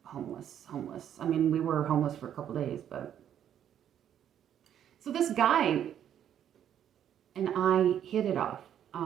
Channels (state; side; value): quieter; left; 9.9 dB